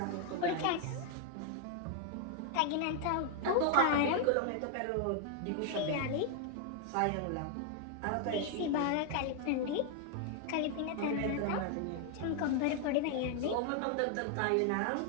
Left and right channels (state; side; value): different; both; correlation 0.00